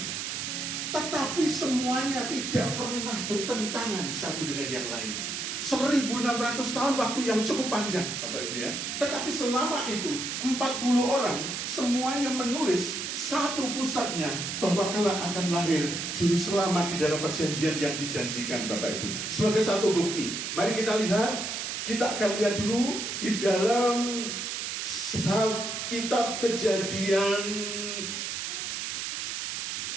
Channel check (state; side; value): noise; right; hiss, 4 dB below the sound